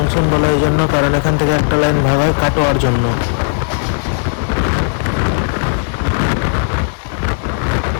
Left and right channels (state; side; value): silent; right; digital silence